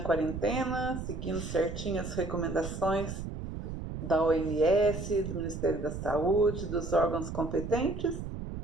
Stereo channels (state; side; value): noise; right; rumble, 7 dB below the sound